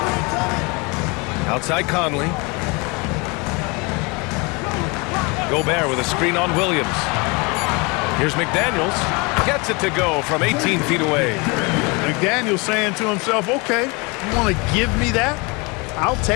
Outside Conley. Gobert with a screen on Williams. Here's McDaniels. Gets it to go from 18 feet away. McDaniels saying to himself, okay, you want to give me that? I'll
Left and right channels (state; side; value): quieter; right; 28.4 dB